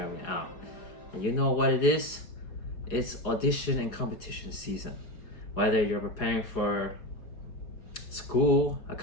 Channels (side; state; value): right; late; 4.9 ms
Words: Au. And you know what it is? It's audition and competition season. Whether you're preparing for school, a